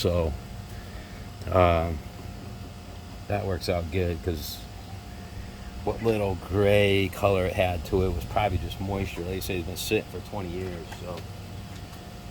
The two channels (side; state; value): both; identical; correlation 1.00